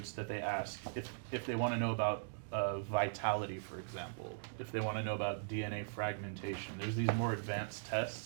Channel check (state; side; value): silent; left; digital silence